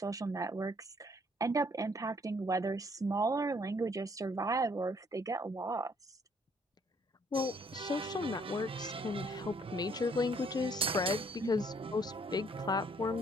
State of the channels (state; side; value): normal; both; correlation 0.64